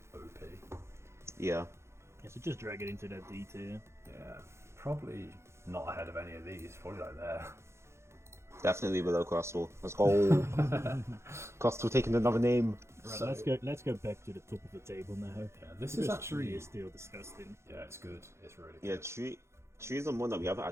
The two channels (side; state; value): left; late; 0.13 ms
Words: OP. Yeah. Yeah, so just drag it into that D tier. Yeah, probably not ahead of any of these. Probably like there. Definitely below Crustle. Let's go. Crustle taking another name. Right, So- let's go back to the top of the table now. Yeah, this Because is Tree actually is still disgusting. yeah, it's good. It's really Yeah, good. Tree is the one that we haven't